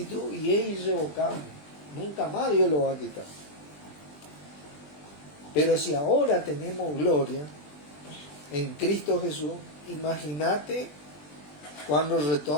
y es irrevocable. Nunca más Dios lo va a quitar. Pero si ahora tenemos gloria en Cristo Jesús, imagínate cuando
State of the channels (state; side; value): late; right; 20 ms